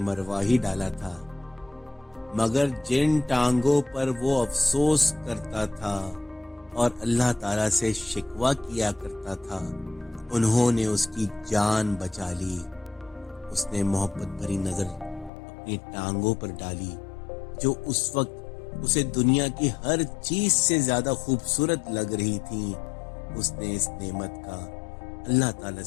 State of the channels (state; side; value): drops out; right; at 15.3 s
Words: ہی ڈالا تھا، مگر جن ٹانگوں پر وہ افسوس کرتا تھا اور اللہ تعالیٰ سے شکوہ کیا کرتا تھا انہوں نے اس کی جان بچا لی۔ اس نے محبت بھری نظر اپنی ٹانگوں پر ڈالی جو اس وقت اسے دنیا کی ہر چیز سے زیادہ خوبصورت لگ رہی تھی۔ اس نے اس نعمت کا اللہ تعالیٰ